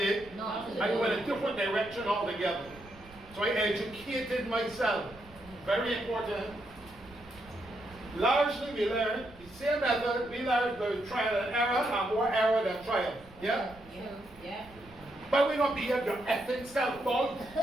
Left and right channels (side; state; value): right; noise; rumble, 22 dB below the sound